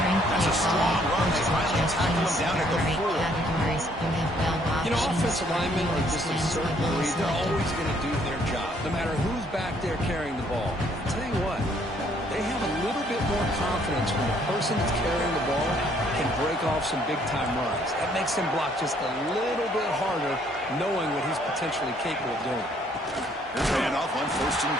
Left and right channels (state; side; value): normal; both; correlation 0.65